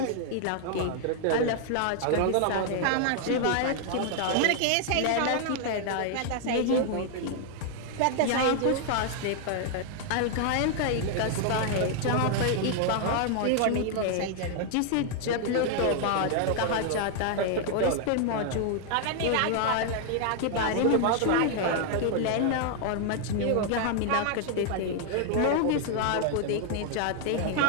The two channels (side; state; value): both; different; correlation 0.00